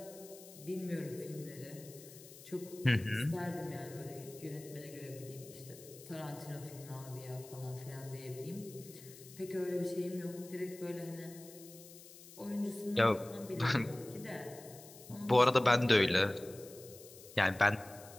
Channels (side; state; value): left; noise; hiss, 18 dB below the sound